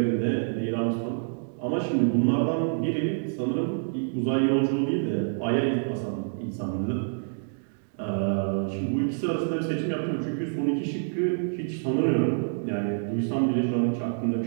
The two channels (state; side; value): silent; left; digital silence